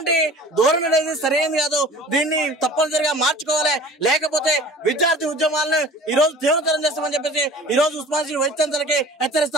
ధోరణి అనేది సరైనది కాదు, దీన్ని తప్పనిసరిగా మార్చుకోవాలి. లేకపోతే విద్యార్థి ఉద్యమాలను ఈ రోజు తీవ్రతరం చేస్తామని చెప్పేసి ఈ రోజు ఉస్మానియా వైస్ ఛాన్సలర్కి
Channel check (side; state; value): both; normal; correlation 0.43